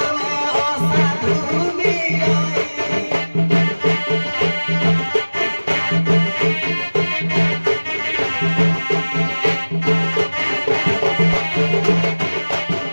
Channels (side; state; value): both; inverted; correlation -1.00